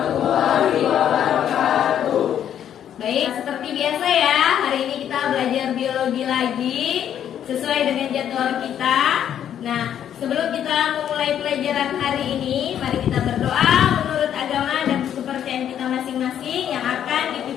wabarakatuh. Baik, seperti biasa ya, hari ini kita belajar biologi lagi sesuai dengan jadwal kita. Nah, sebelum kita memulai pelajaran hari ini, mari kita berdoa menurut agama dan kepercayaan kita masing-masing yang akan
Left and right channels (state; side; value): quieter; right; 9.8 dB